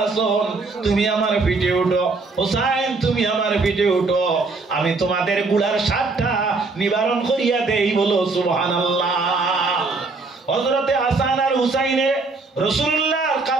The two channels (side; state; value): left; quieter; 3.8 dB